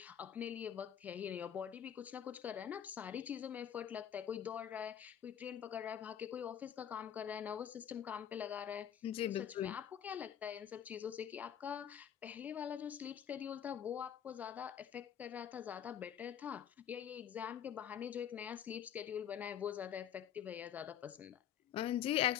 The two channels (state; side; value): quieter; right; 9.5 dB